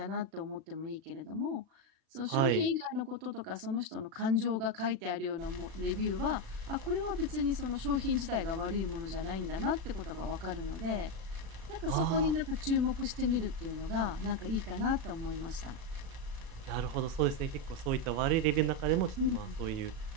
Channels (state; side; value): late; left; 36 ms